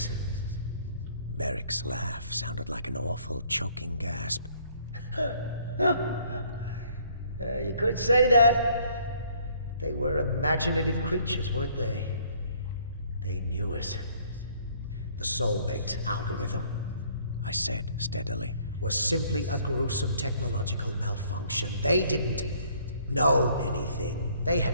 Merrick's laugh sounded like an awful, choking gasp. You could say that. They were imaginative creatures, weren't they? They knew us. The soulmate algorithm, I said steadily, was simply a gruesome technological malfunction. They didn't know anything. They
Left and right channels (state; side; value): inverted; both; correlation -0.61